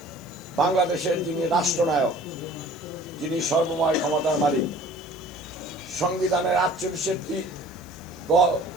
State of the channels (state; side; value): noise; left; hiss, 24 dB below the sound